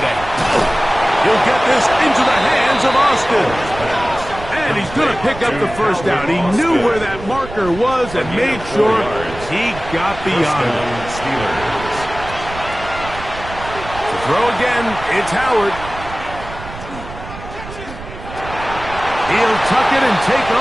He'll get this into the hands of Austin. And he's going to pick up the first down. He knew where that marker was and made sure he got beyond it. To throw again, it's Howard. He'll tuck it and take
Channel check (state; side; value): noise; right; rumble, 13 dB below the sound